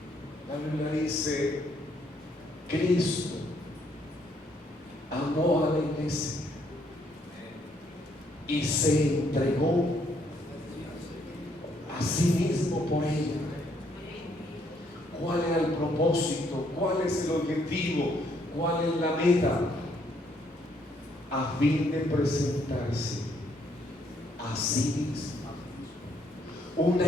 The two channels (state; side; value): normal; both; correlation 0.70